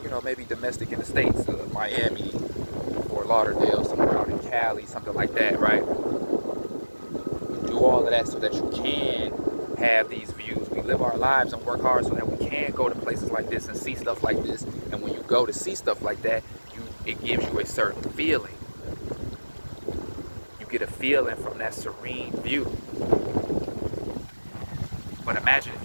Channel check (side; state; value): both; inverted; correlation -1.00